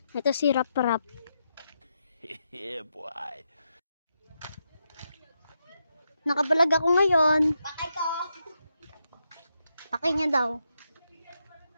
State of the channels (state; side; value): inverted; both; correlation -0.83